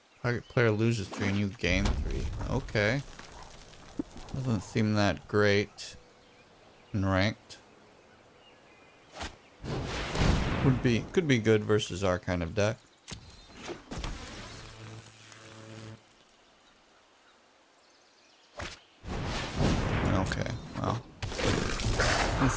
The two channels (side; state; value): both; identical; correlation 1.00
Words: Target player loses 3 and you gain 3. Okay. Doesn't seem that great. Ranked could be good versus our kind of deck. Okay, well, I